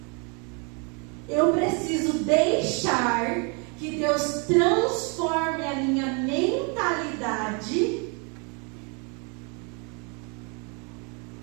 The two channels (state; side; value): quieter; left; 35.0 dB